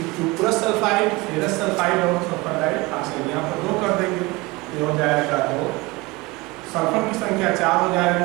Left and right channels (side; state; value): left; quieter; 23.1 dB